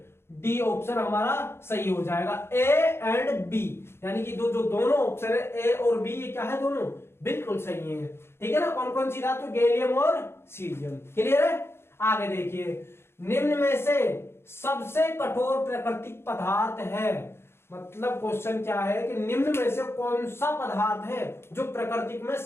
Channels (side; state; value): right; late; 0.12 ms